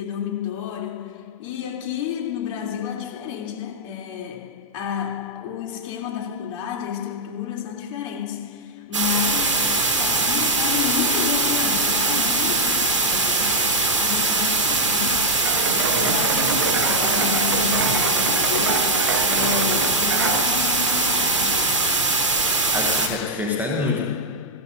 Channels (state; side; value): normal; both; correlation -0.02